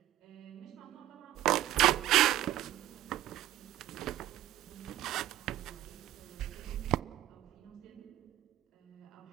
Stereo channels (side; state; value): left; quieter; 13.5 dB